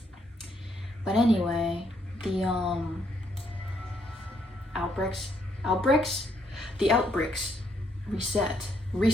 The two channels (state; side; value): normal; both; correlation 0.72